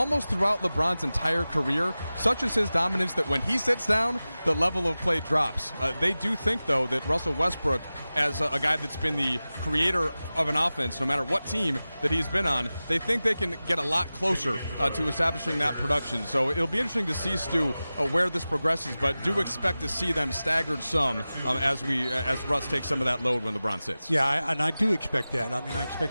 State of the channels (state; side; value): inverted; both; correlation -0.96